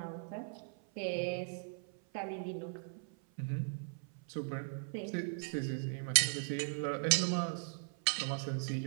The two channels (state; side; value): silent; left; 52 dB below the other